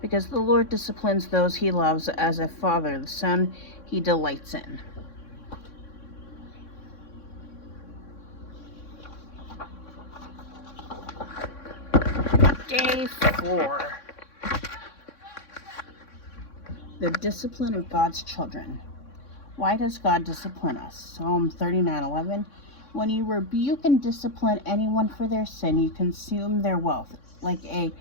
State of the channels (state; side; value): late; right; 3.6 ms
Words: because the Lord disciplines those he loves as a father, the son he delights in. Day 4. The discipline of God's children. Why does God discipline us? Psalm 39:11. When you rebuke and discipline anyone for their sin, you consume their wealth. Like a